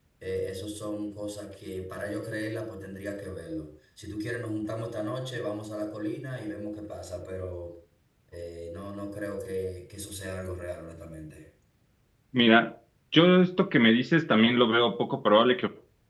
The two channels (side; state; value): both; identical; correlation 1.00